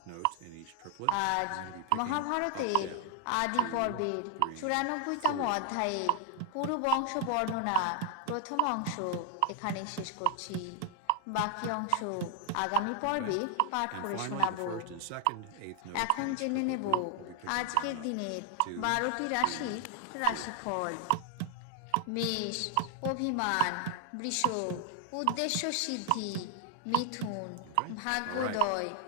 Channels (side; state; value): both; different; correlation 0.00